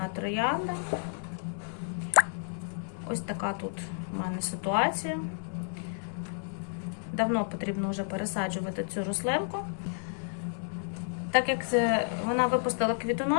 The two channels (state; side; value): silent; right; digital silence